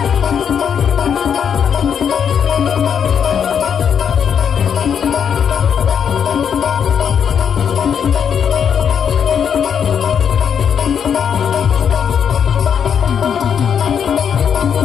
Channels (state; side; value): quieter; right; 7.7 dB